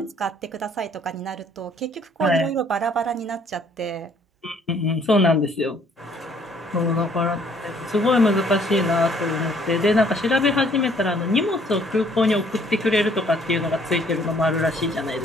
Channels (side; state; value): both; normal; correlation 0.61